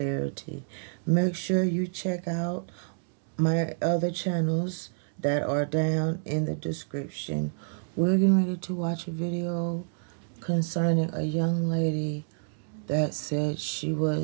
Make sure you check out my other channels that are down in the description. We're getting ready to watch a video concerning a young lady that said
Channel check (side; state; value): left; silent; digital silence